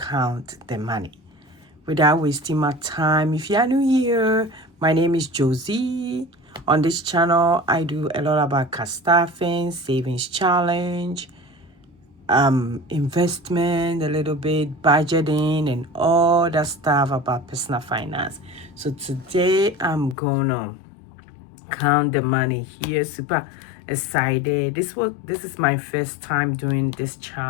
the money. Without wasting my time, if you are new here, my name is Josie. On this channel, I do a lot about cash staffing, savings challenge, investment, a little bit budgeting and all that stuff about personal finance. So today I'm gonna count the money here. Super excited. This is my first time doing this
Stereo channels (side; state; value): right; drops out; at 20.2 s